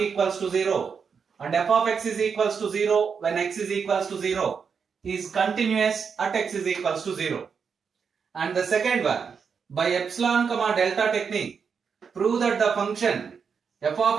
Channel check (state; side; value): quieter; left; 6.2 dB